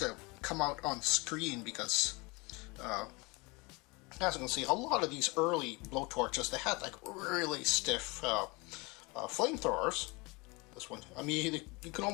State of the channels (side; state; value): right; quieter; 26.5 dB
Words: come out on screen because, as you can see, a lot of these early blowtorches, they had like really stiff flamethrowers. This one, I mean, you can